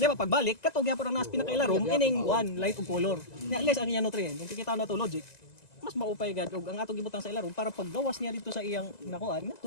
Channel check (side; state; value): right; late; 1.9 ms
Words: ba pagbalik katog gyapon ang nas pinakailarom ining one light ug color. Nya less ang iyang nutrient. Kung kikita na to logic, mas maupay gad og ang atong gibutang sa ilarom para paggawas niya dito sa iyang nakuan ngadto